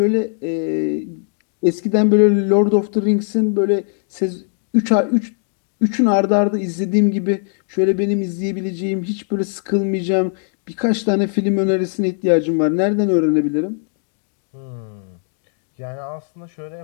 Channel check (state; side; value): silent; right; digital silence